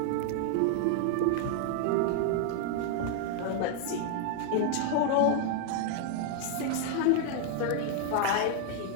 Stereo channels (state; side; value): different; both; correlation 0.00